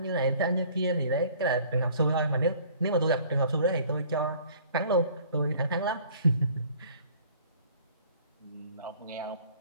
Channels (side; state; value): both; inverted; correlation -0.54